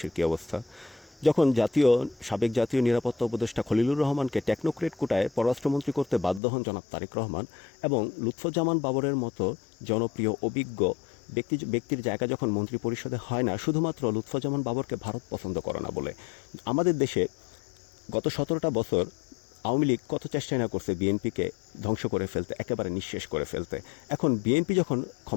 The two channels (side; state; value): right; drops out; at 6.4 s